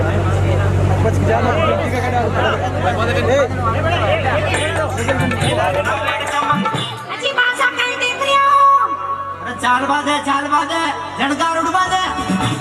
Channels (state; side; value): identical; both; correlation 1.00